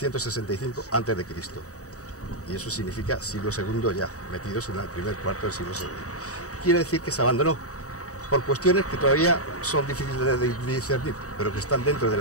a.C. Y eso significa siglo II ya, metidos en el primer cuarto del siglo II. Quiere decir que se abandonó por cuestiones que todavía son difíciles de discernir, pero que están dentro del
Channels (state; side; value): late; right; 0.66 ms